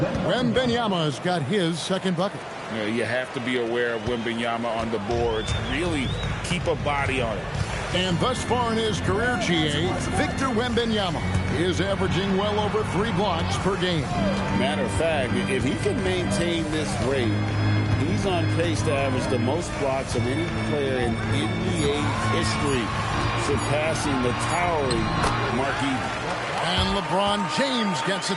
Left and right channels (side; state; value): both; identical; correlation 1.00